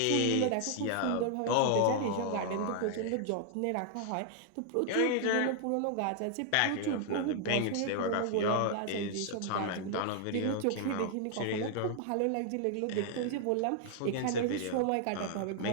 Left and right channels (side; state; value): both; different; correlation 0.00